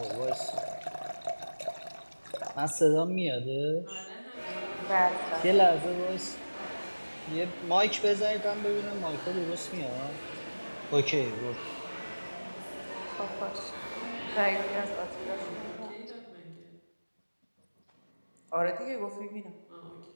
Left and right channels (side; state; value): both; inverted; correlation -1.00